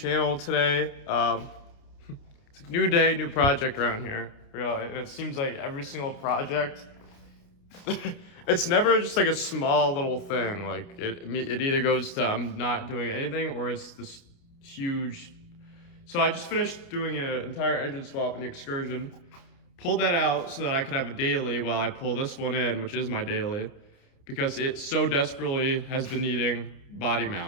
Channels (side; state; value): right; late; 29 ms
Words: today. It's a new day, new project around here, really, and it seems like every single project, it's never just like a small little thing. Like it either goes to I'm not doing anything or it's this huge. So I just finished doing an entire engine swap in the Excursion, pulled that out so that I could have a daily while I pull this one in, which is my daily, because it so desperately has been needing body